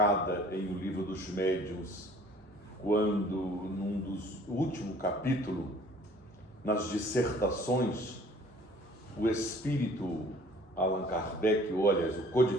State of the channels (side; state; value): both; normal; correlation 0.53